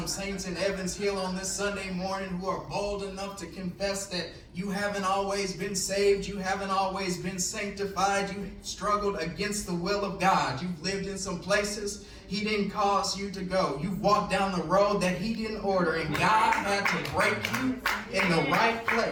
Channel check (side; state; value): both; identical; correlation 1.00